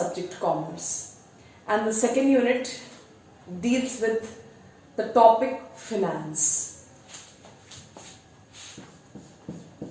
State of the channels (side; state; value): both; identical; correlation 1.00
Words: commerce, and the second unit deals with the topic finance.